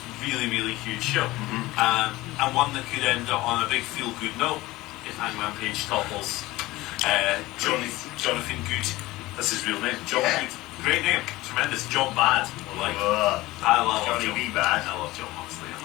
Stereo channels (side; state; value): right; quieter; 18.9 dB